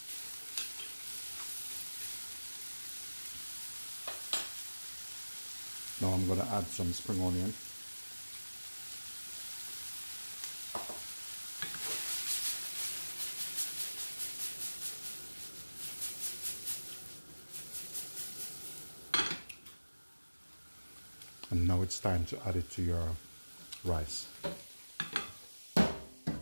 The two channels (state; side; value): inverted; both; correlation -1.00